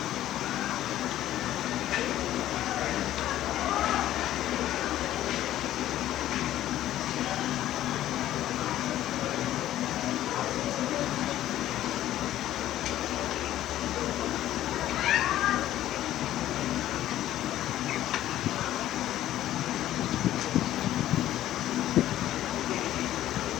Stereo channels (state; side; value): quieter; right; 13.2 dB